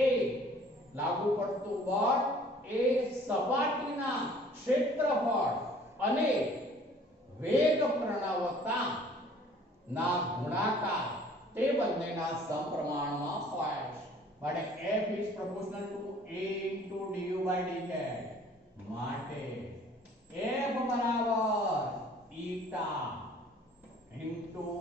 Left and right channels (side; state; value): both; normal; correlation 0.53